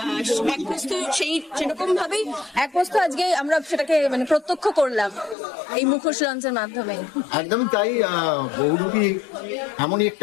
এক বস্তু সেরকম ভাবেই এক বস্তু আজকে আমরা সেটাকে মানে প্রত্যক্ষ করলাম এই মুখোশ লঞ্চের মাধ্যমে। একদমই তাই। বহুরূপী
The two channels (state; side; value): drops out; right; at 5.4 s